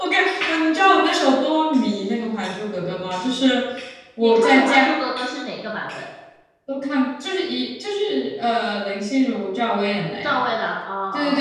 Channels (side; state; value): both; identical; correlation 1.00